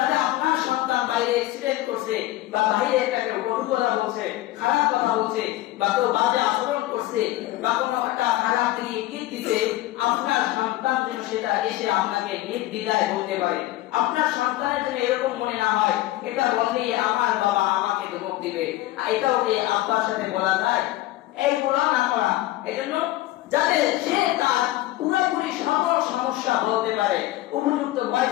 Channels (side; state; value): right; quieter; 16.3 dB